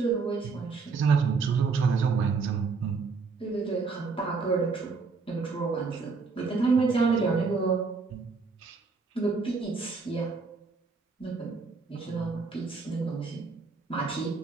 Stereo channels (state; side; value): quieter; left; 4.6 dB